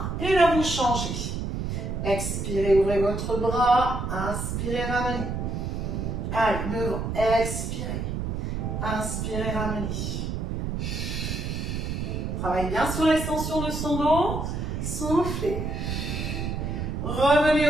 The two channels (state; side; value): noise; right; rumble, 3 dB below the sound